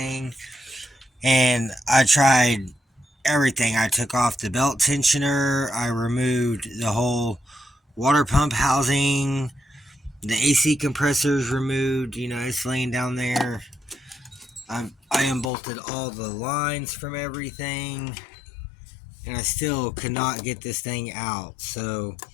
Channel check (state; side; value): drops out; right; at 15.5 s